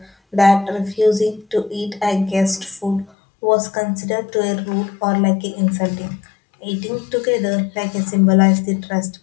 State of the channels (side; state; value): right; drops out; at 3.1 s